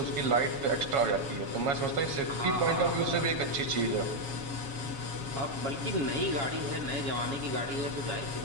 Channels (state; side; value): late; left; 7.2 ms